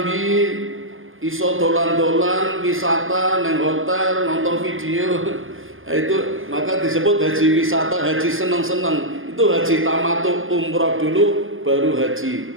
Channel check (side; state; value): left; late; 0.59 ms